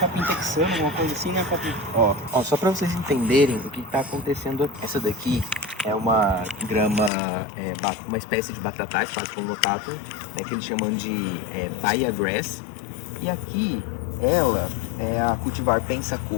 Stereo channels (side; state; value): right; drops out; at 7.1 s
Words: texano, alguma coisa assim, né, Capim? Ó, só pra vocês entenderem o que tá acontecendo aqui. Essa daqui é uma grama, uma espécie de batatais, Paspalum notatum, que eles chamam de Baia Grass. E aqui, ela é a cultivar